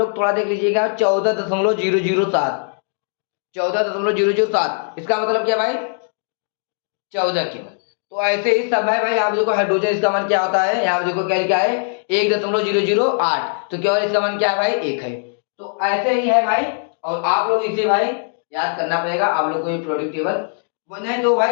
थोड़ा देख लीजिएगा 14.007, 14.007, इसका मतलब क्या भाई 14 केवल। तो ऐसे ही सब है भाई, आप देखो हाइड्रोजन इसका मान क्या होता है, यहाँ देखो क्या है 1.008, तो केवल इसका मान क्या है भाई 1 है। तो ऐसे ही है भाई, और आप लोग इसे भाई याद करना पड़ेगा आप लोग को ये प्रोडक्ट टेबल, नहीं तो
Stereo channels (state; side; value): silent; right; 66 dB below the other